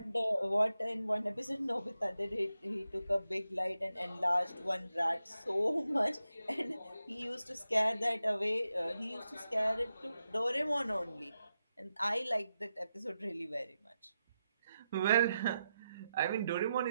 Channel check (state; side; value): inverted; both; correlation -0.88